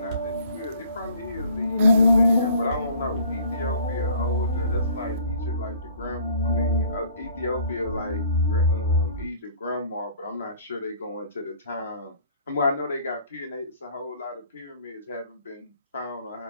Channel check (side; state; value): both; inverted; correlation -0.54